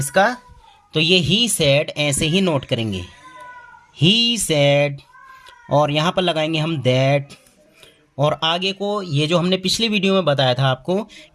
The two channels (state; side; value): identical; both; correlation 1.00